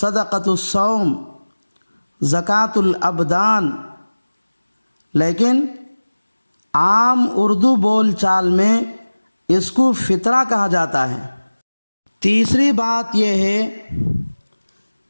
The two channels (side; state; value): both; inverted; correlation -1.00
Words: الصوم، زکوٰۃ الابدان، لیکن عام اردو بول چال میں اس کو فطرہ کہا جاتا ہے۔ تیسری بات یہ ہے